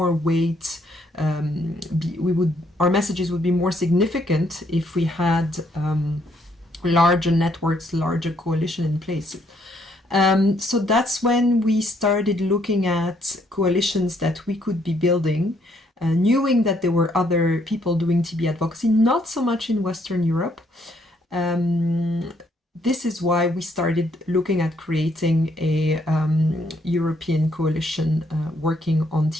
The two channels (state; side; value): normal; both; correlation 0.70